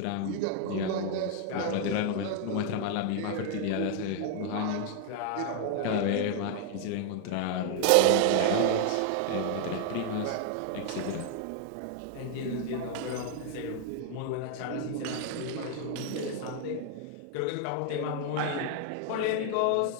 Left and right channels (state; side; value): different; both; correlation 0.00